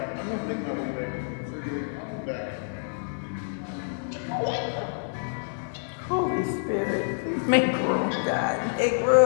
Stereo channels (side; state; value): right; silent; digital silence